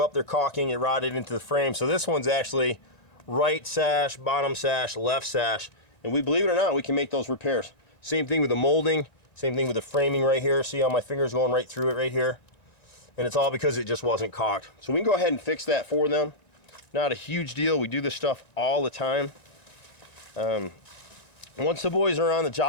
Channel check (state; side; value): late; right; 1.9 ms